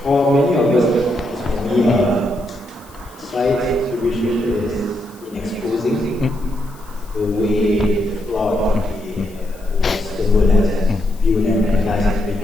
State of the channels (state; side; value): noise; left; hiss, 25 dB below the sound